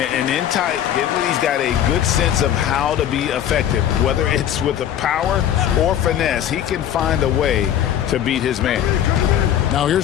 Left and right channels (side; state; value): right; quieter; 10.5 dB